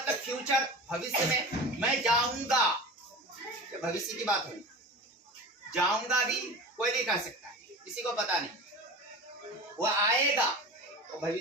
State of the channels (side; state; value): both; normal; correlation 0.33